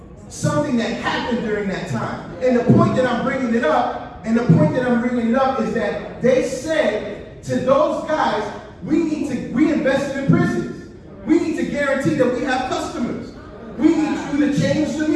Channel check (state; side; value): identical; both; correlation 1.00